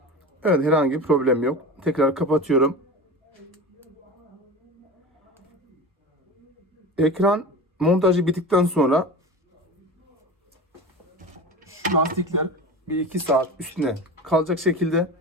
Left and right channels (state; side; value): normal; both; correlation 0.30